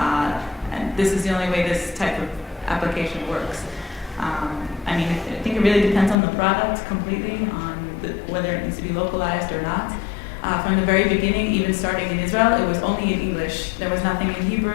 this is the only way this type of application works. I mean, I think it really depends on the product completely, on whether it needs to be localized or not. From the very beginning, even starting in Israel, it was only in English. There was nothing in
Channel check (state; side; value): drops out; right; at 6.2 s